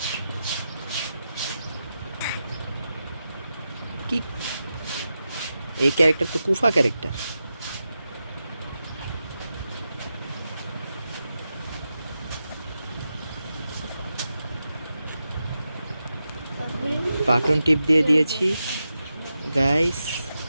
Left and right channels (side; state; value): both; inverted; correlation -0.89